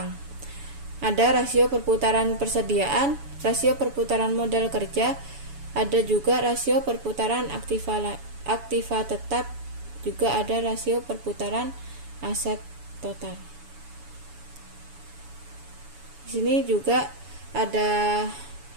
Ada rasio perputaran persediaan, rasio perputaran modal kerja, ada juga rasio perputaran aktiva tetap, juga ada rasio perputaran aset total. Di sini juga ada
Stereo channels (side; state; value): left; late; 7.0 ms